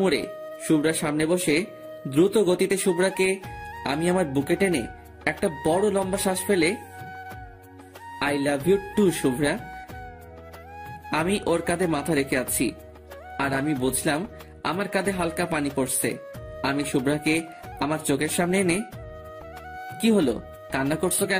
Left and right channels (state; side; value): identical; both; correlation 1.00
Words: মুড়ে শুভ্রার সামনে বসে দ্রুত গতিতে শুভ্রাকে আমি আমার বুকে টেনে একটা বড় লম্বা শ্বাস ফেলে, I love you too Shubhra. আমি ওর কাঁধে মাথা রেখে আছি আর আমি বুঝলাম আমার কাঁধে হালকা পানি পড়ছে। আমি শুভ্রাকে আমার চোখের সামনে এনে, কি হলো, কান্না করছো